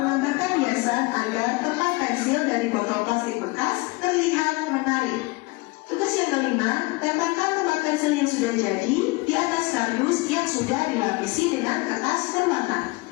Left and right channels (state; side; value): quieter; right; 23.9 dB